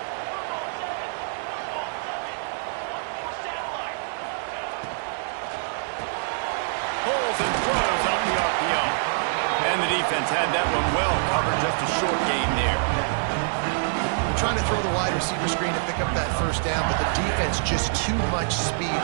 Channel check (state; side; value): silent; left; digital silence